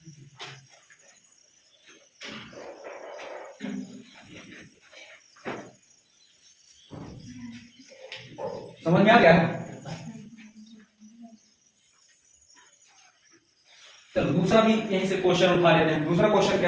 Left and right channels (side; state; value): both; identical; correlation 1.00